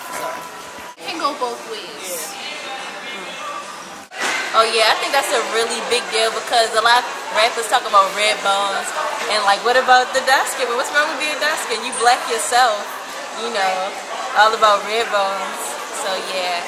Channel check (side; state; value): both; identical; correlation 1.00